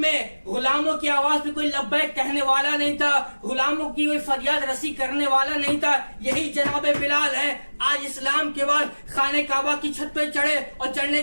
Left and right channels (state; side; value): inverted; both; correlation -1.00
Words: غلاموں کی آواز پہ کوئی لبیک کہنے والا نہیں تھا، غلاموں کی کوئی فریاد رسی کرنے والا نہیں تھا. یہی جناب بلال ہے. آج اسلام کے بعد خانہ کعبہ کی چھت پہ چڑھے اور